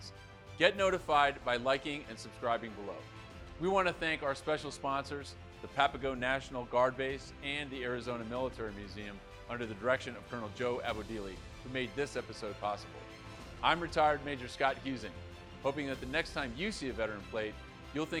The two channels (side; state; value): both; identical; correlation 1.00